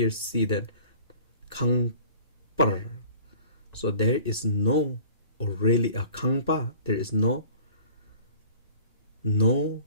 see that kangpar. So there is no, or really a kangpa, there is no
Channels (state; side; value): inverted; both; correlation -0.47